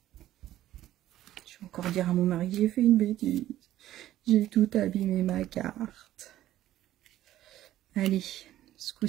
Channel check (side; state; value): left; quieter; 13.5 dB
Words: dire à mon mari que j'ai fait une bêtise. J'ai tout abîmé ma carte. Allez, ce